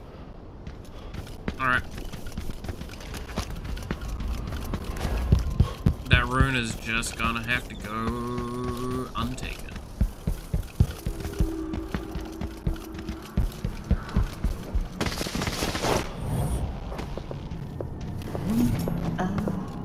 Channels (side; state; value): both; identical; correlation 1.00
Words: Alright. That rune is just gonna have to go untaken.